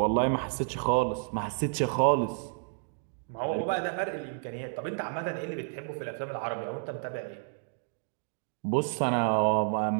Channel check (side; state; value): left; silent; digital silence